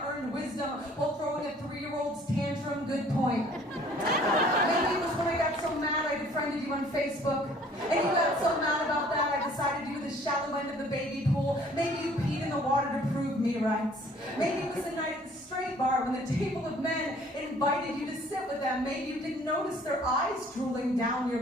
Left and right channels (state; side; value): normal; both; correlation 0.56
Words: wisdom while throwing a 3-year-old's tantrum. Good point. Maybe it was when I got so mad I befriended you on Facebook and you got so mad about that I decided you were the shallow end of the baby pool. Maybe you peed in the water to prove me right. Maybe it was the night at the straight bar when the table of men invited you to sit with them. Maybe you didn't notice their eyes drooling down